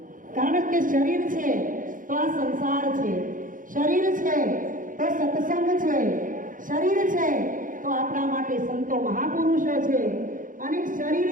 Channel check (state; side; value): late; left; 0.39 ms